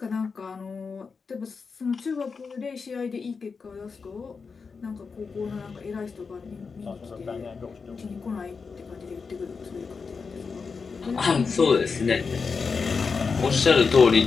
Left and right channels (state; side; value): quieter; right; 5.1 dB